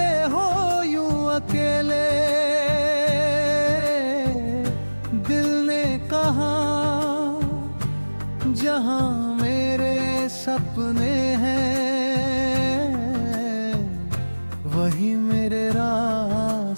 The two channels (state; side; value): inverted; both; correlation -1.00